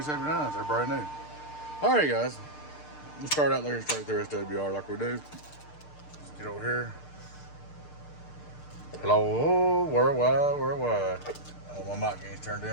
They're brand new. Alright guys. Let's start out there and straight through SWR like we do. Get over here. Hello, worldwide. Oh, my mic gain's turned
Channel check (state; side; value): late; right; 6.7 ms